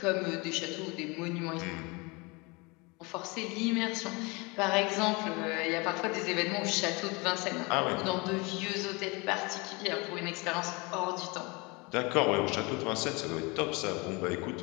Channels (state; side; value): quieter; right; 27.2 dB